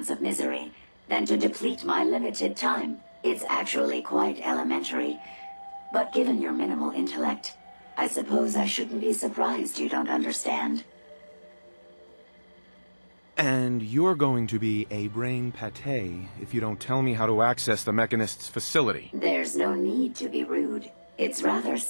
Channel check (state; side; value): inverted; both; correlation -1.00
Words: of misery than to deplete my limited time. It's actually quite elementary, but given your minimal intellect, I suppose I shouldn't be surprised you don't understand. And you're going to be a brain pate if you don't tell me how to access the Mechanist's facility. There's no need to be rude. It's rather